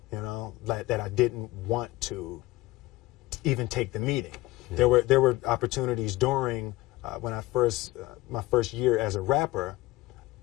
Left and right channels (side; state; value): right; quieter; 19.0 dB